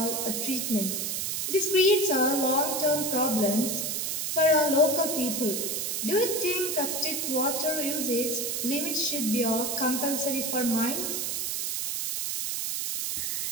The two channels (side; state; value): right; noise; hiss, 1 dB below the sound